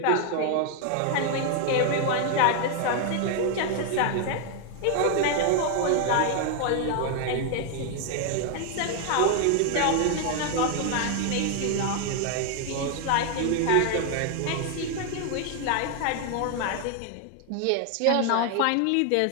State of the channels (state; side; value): different; both; correlation 0.00